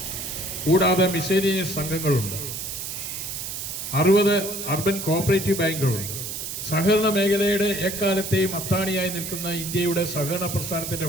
കൂടാതെ മിസേലിയസ് സംഘങ്ങളുണ്ട്. 60 അർബൻ കോഓപ്പറേറ്റീവ് ബാങ്കുകളുണ്ട്. സഹകരണ മേഖലയുടെ എക്കാലത്തെയും അത്താണിയായി നിൽക്കുന്ന ഇന്ത്യയുടെ സഹകരണ പ്രസ്ഥാനത്തിൻ്റെ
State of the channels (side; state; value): right; noise; hiss, 6 dB below the sound